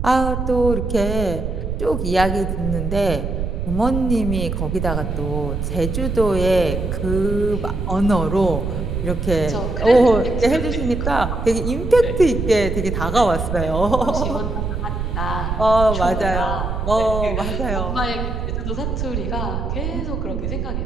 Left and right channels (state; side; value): noise; right; rumble, 3 dB below the sound